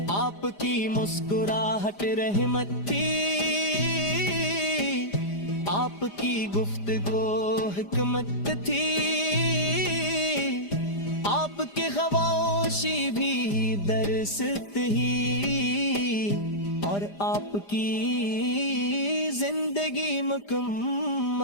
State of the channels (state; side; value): late; right; 5.0 ms